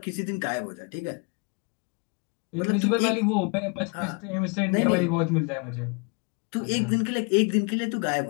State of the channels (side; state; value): right; quieter; 33.5 dB